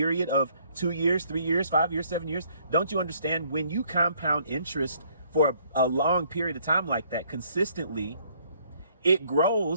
of 2 years, 3 years, 5 years, 7 years. Don't you understand, when you compound interest for a long period of time like that consistently, it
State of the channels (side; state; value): both; inverted; correlation -0.65